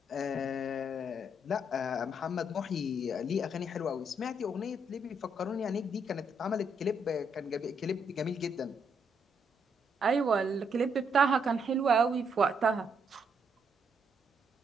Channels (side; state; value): both; normal; correlation 0.75